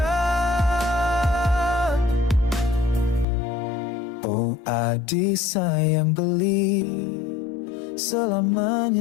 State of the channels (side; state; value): right; drops out; at 3.2 s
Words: Oh Adi sayang beli,